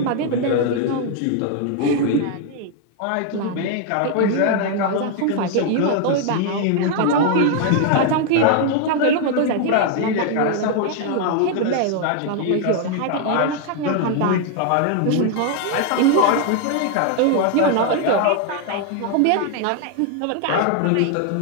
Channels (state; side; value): different; both; correlation 0.00